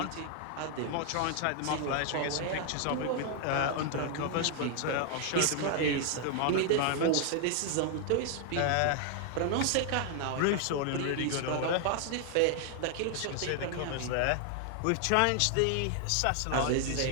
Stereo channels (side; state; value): both; different; correlation 0.00